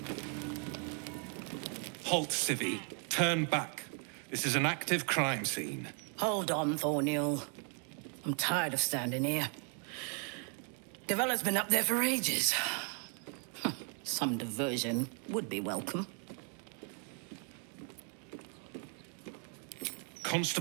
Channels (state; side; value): quieter; left; 39.8 dB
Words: Halt, Civvy. Turn back. This is an active crime scene. Hold on, Thornhill. I'm tired of standing here. Devella's been up there for ages. Some diversion would be welcome.